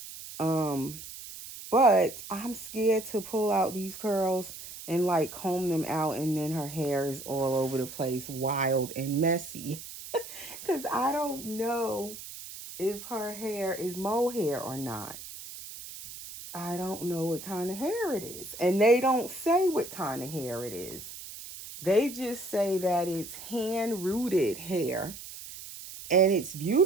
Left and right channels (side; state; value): right; noise; hiss, 12 dB below the sound